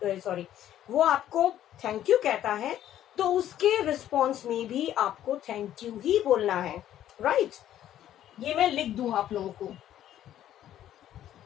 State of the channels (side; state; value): right; quieter; 11.8 dB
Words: वो आपको थैंक यू कहता है, तो उसके रिस्पॉन्स में भी आपको थैंक यू ही बोलना है. राइट? ये मैं लिख दूं आप लोगों को.